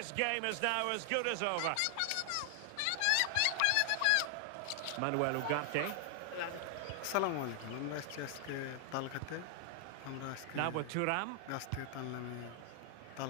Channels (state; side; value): different; both; correlation 0.00